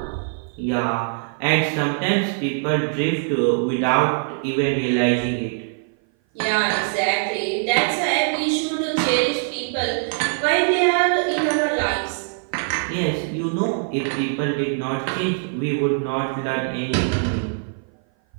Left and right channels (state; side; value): silent; left; 57 dB below the other